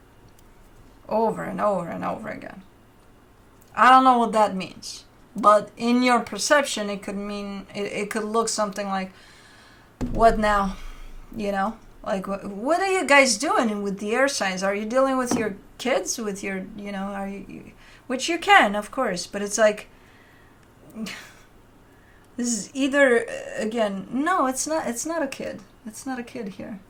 Over and over and over again. I don't know what that means, but in your perception, it could mean it could look something like, "What now?" You know, like what are you guys doing with the air signs? Are you dealing with your kids? With your, you know, are you? Which you can, of course, but it's like this is either again. No, it's not. It's not a kid. It's not a kid here.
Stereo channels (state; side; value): identical; both; correlation 1.00